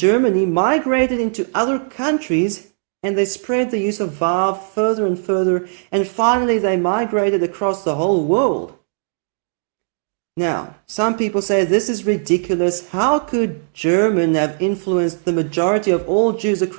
migrated into other countries and they spread the use of Vav further and further, and finally they migrated across the whole world. Now, some people say this is ridiculous. How could German have influenced the majority of all Jews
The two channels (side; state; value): left; silent; digital silence